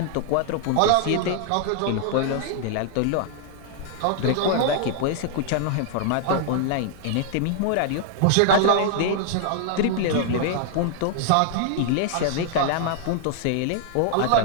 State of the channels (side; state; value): both; different; correlation 0.00